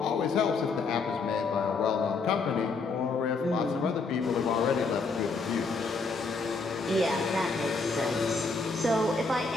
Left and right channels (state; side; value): quieter; right; 4.2 dB